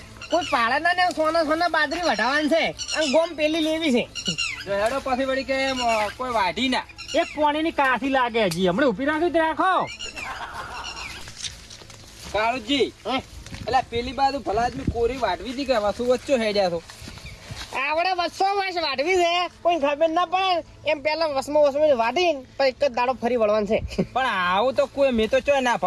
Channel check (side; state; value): both; identical; correlation 1.00